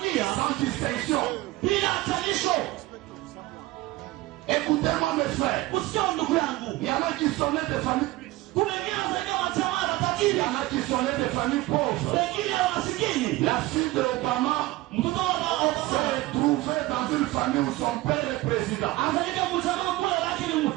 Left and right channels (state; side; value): quieter; left; 18.4 dB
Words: sans distinction. mes frères, il y en a qui sont nés de familles. Il y en a qui sont nés de familles pauvres. La fille de Obama s'est trouvée dans une famille où son père est président.